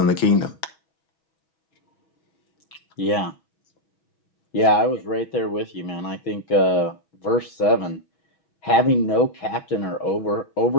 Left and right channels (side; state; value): right; late; 6.2 ms